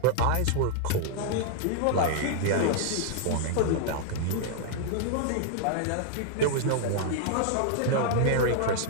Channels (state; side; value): different; both; correlation 0.00